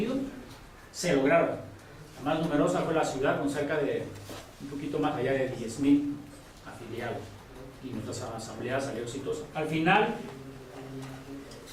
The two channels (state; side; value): identical; both; correlation 1.00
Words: se lograron. La más numerosa fue la ciudad, con cerca de un poquito más allá de 10,000 afiliados, y nuestra asamblea salió exitosa. Al final,